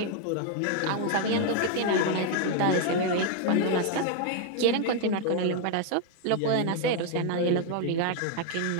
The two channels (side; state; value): both; different; correlation 0.01